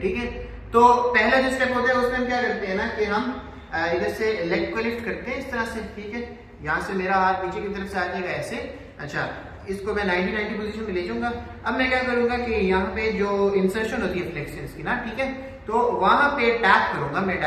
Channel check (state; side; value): identical; both; correlation 1.00